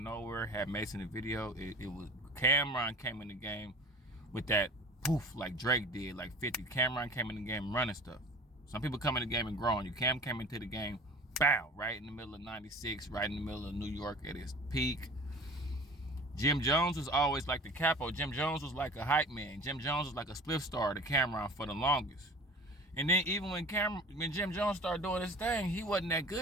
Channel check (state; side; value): normal; both; correlation 0.41